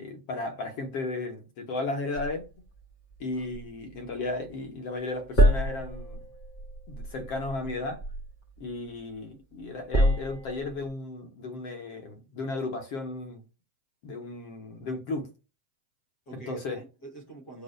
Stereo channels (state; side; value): late; right; 7.6 ms